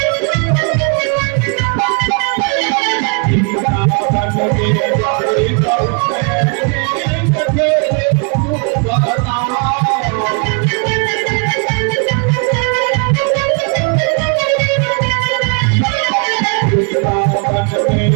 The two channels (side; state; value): left; quieter; 36.7 dB